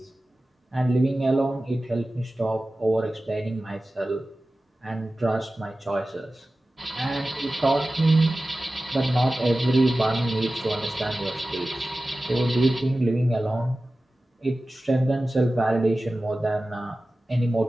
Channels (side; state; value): both; normal; correlation 0.96